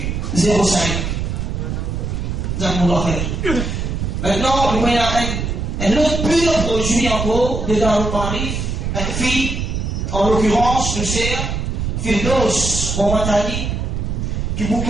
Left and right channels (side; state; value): right; noise; rumble, 2 dB below the sound